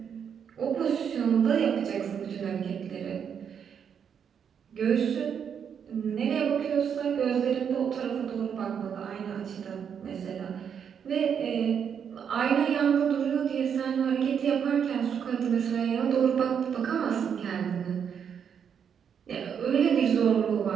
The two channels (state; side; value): quieter; left; 7.6 dB